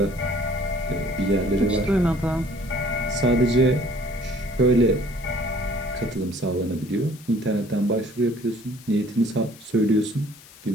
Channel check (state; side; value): noise; left; hiss, 22 dB below the sound